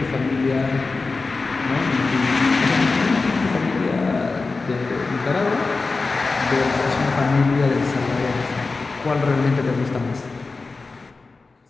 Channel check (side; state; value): right; quieter; 3.9 dB